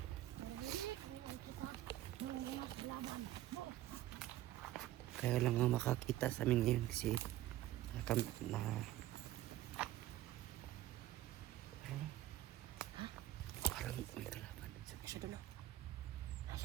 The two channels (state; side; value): quieter; left; 14.1 dB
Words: Hindi na kalaban. Kaya lang ang makakita sa amin ngayon kasi na parang may kalaban. isa doon, no?